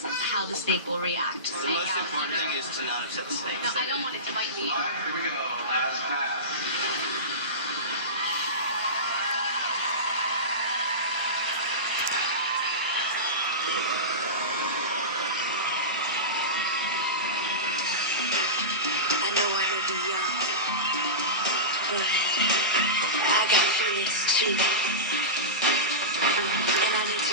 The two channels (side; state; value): both; normal; correlation -0.20